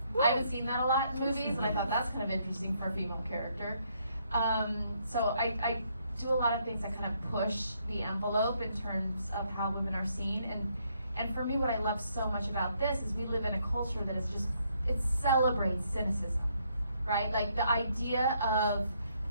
I haven't seen that a lot in movies, and I thought that's kind of interesting for a female character. So I do a lot of things that kind of push the envelope in terms of how women are seen. And for me, what I love so much about this is we live in a culture that is just, it celebrates cynicism, right? Like the idea of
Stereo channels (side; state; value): both; inverted; correlation -0.72